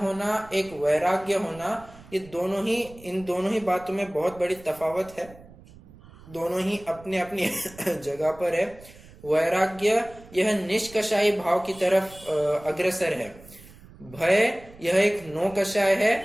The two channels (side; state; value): right; noise; rumble, 21 dB below the sound